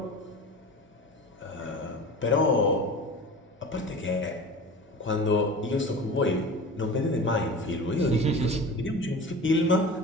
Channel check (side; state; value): both; normal; correlation 0.35